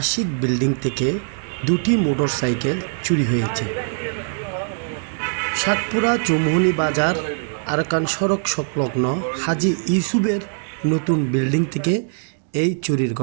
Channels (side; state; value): left; silent; digital silence